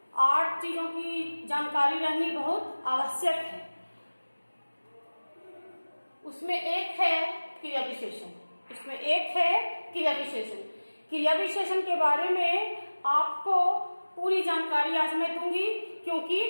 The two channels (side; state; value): both; inverted; correlation -1.00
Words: 8 चीजों की जानकारी रहनी बहुत आवश्यक है। उसमें एक है क्रिया विशेषण। क्रिया विशेषण के बारे में आपको पूरी जानकारी आज मैं दूंगी, क्योंकि